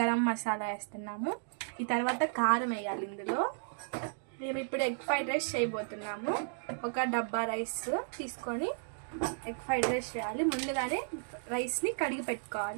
మసాలా వేస్తున్నాము. ఈ తర్వాత కారం వేయాలి. ఇందులో మేము ఇప్పుడు ఎగ్ ఫ్రైడ్ రైస్ చేయబోతున్నాము. ఒక డబ్బా రైస్ తీసుకొని ఎగ్ ఫ్రైడ్ రైస్ చేయాలి. ముందుగానే రైస్ని కడిగి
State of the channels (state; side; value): silent; left; digital silence